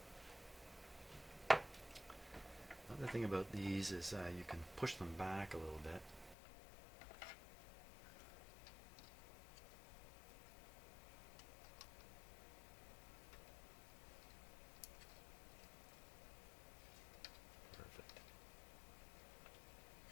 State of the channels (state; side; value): drops out; right; at 6.4 s